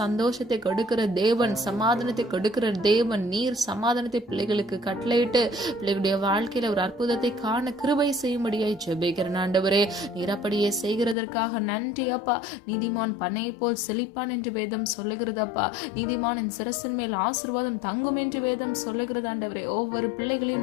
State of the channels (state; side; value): drops out; right; at 11.2 s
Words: கொடுக்கிற தேவன், சமாதானத்தை கொடுக்கிற தேவன், நீர் சமாதானத்தை பிள்ளைகளுக்கு கட்டளையிட்டு பிள்ளைகளுடைய வாழ்க்கையில ஒரு அற்புதத்தை காண கிருபை செய்யும்படியாய் ஜெபிக்கிறேன் ஆண்டவரே. நீர் அப்படியே செய்கிறதற்காக நன்றி அப்பா. நீதிமான் பண்ணை போல் செழிப்பான் என்று வேதம் சொல்லுகிறதப்பா. நீதிமானின் சிரசின் மேல் ஆசீர்வாதம் தங்கும் என்று வேதம் சொல்லுகிறது ஆண்டவரே. ஒவ்வொரு